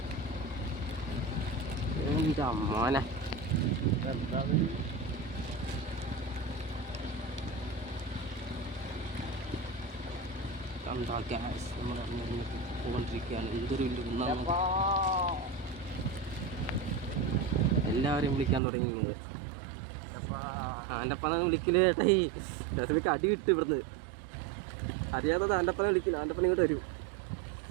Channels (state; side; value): drops out; left; at 18.6 s